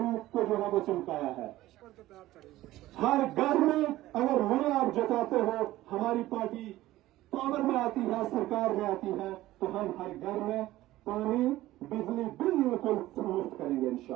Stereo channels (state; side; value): quieter; left; 16.0 dB